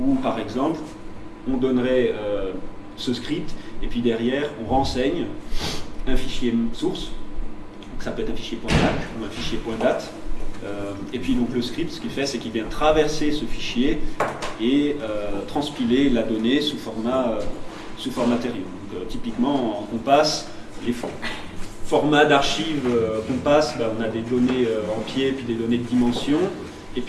par exemple, on donnerait ce script, et puis derrière, on renseigne un fichier source, donc ça peut être un fichier .dac ou un fichier .dat. Et puis donc le script, ce qu'il fait, c'est qu'il vient traverser ce fichier et transpiler la donnée sous format Deuterion. Donc, typiquement, on passe les formats d'archives qu'on passe, on a des données en pied, puis des données de dimension, et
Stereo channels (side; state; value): both; identical; correlation 1.00